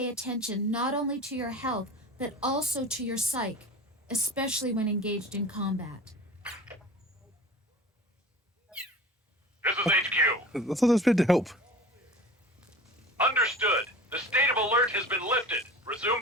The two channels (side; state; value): both; normal; correlation 0.38